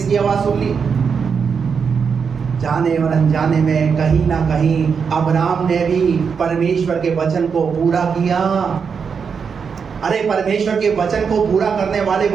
आवाज सुन ली? जाने और अनजाने में कहीं ना कहीं अब्राहम ने भी परमेश्वर के वचन को पूरा किया। अरे परमेश्वर के वचन को पूरा करने वाले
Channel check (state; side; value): quieter; left; 6.1 dB